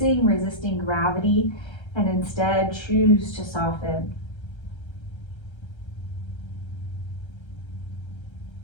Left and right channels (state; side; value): late; right; 1.3 ms